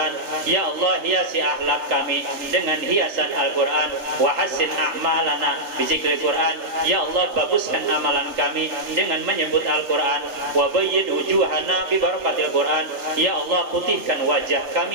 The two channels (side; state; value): left; late; 3.3 ms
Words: Ya Allah, hiasi akhlak kami dengan hiasan Al-Qur'an. Wa hassin a'malana bi zikril Quran. Ya Allah, baguskan amalan kami dengan menyebut Al-Quran. Wa bayyid wujuhana bi barakatil Quran. Ya Allah, putihkan wajah